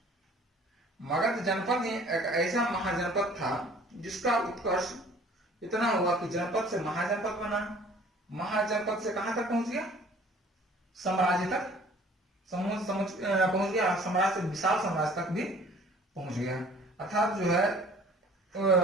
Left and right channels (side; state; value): both; normal; correlation 0.51